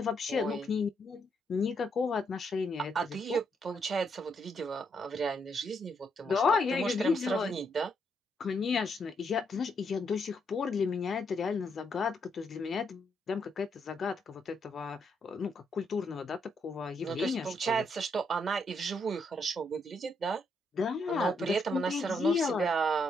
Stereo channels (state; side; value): normal; both; correlation 0.76